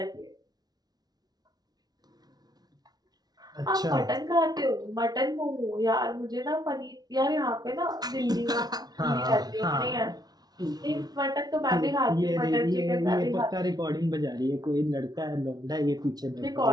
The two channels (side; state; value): left; late; 0.19 ms